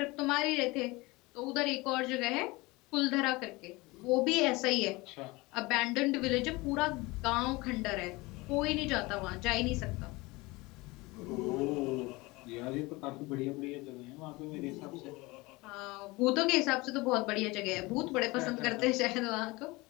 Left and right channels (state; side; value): quieter; right; 23.0 dB